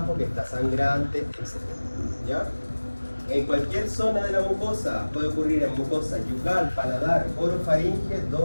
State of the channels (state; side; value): inverted; both; correlation -1.00